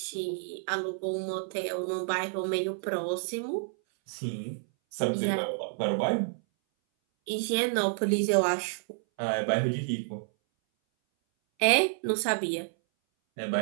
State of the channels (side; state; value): left; silent; 58 dB below the other